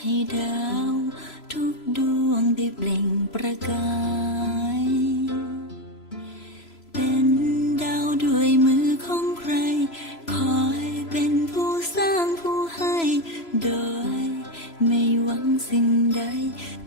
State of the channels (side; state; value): right; late; 3.0 ms